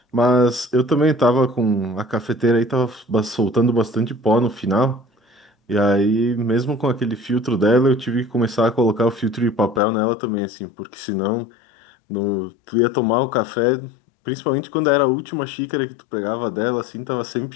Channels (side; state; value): right; drops out; at 9.8 s